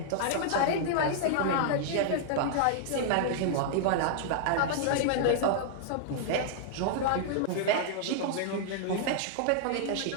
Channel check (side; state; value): both; different; correlation -0.01